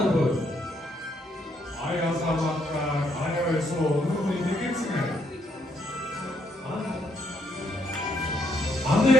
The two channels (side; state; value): both; normal; correlation 0.71